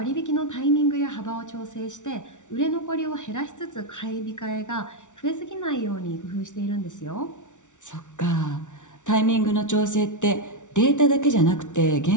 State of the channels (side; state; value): right; late; 0.86 ms